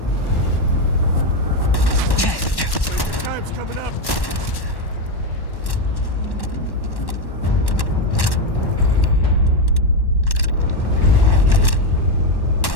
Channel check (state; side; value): late; right; 1.1 ms